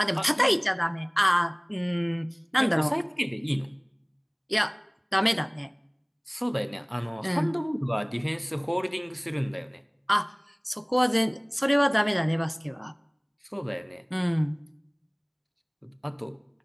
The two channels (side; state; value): both; identical; correlation 1.00